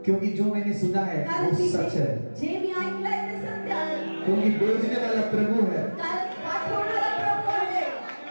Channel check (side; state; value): both; inverted; correlation -1.00